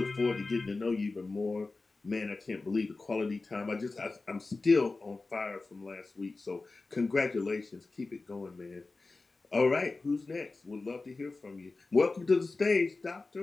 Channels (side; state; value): right; quieter; 3.6 dB